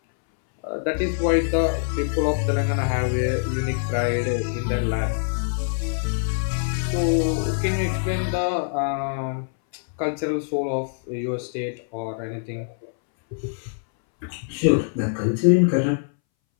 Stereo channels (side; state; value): right; silent; 61 dB below the other